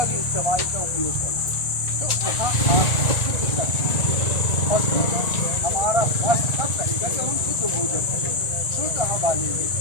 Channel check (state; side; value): late; right; 1.4 ms